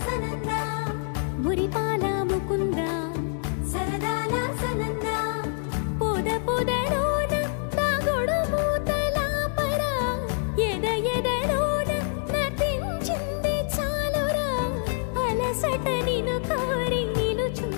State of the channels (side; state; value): right; silent; digital silence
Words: సనంద మురిపాల ముకుంద సరదాల సనంద పొద పొదలోన తాగుడు మూతలాపర ఎద ఎదలోన నటించింది చాలురా అలసట నిను కోరి